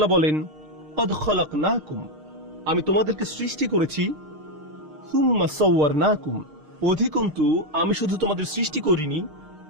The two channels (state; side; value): late; left; 6.5 ms